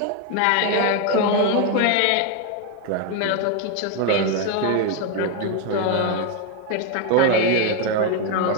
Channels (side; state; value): both; different; correlation 0.01